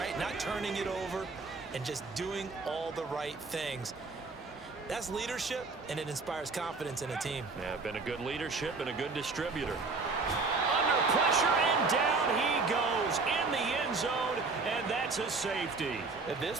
Not turning it over, and just doing all the right things. That's leadership, and it inspires confidence in a team. Yeah, been a good leadership and a good distributor. Under pressure, and down he goes in the end zone, and that's a safety. At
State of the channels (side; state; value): left; quieter; 4.0 dB